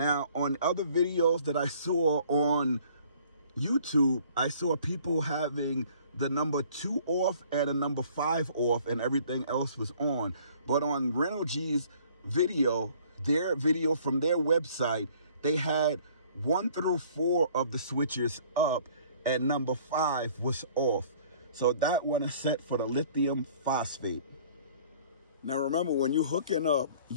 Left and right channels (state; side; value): inverted; both; correlation -0.55